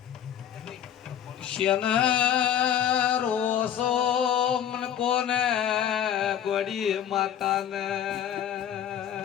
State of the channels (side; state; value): right; quieter; 9.9 dB